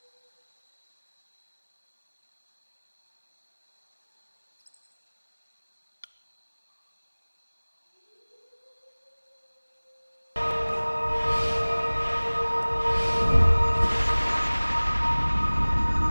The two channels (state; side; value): inverted; both; correlation -1.00